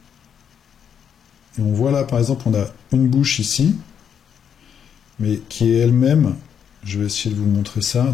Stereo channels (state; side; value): quieter; right; 8.0 dB